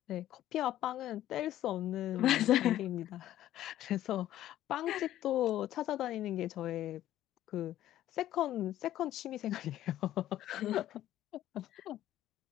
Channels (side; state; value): right; quieter; 13.1 dB